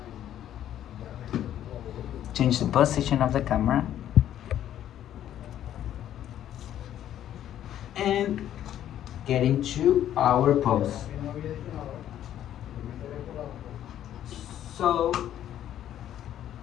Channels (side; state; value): right; quieter; 11.3 dB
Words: Change the position of the camera. And get into our pose. So,